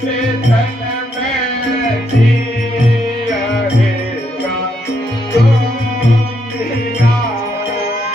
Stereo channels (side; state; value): both; normal; correlation 0.77